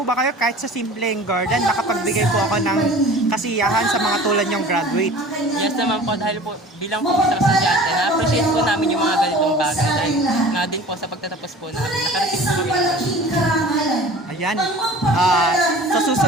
ba kayo kahit sa simpleng Garland nakapagbigay po ako ng kasiyahan sa mga tulad nyong graduate? Yes naman po dahil po bilang po isang estudyante na-appreciate po namin yung mga ganitong bagay dahil nga din po sa pagtatapos po namin nakarating po kami. Ayan. Sa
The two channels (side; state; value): both; normal; correlation 0.43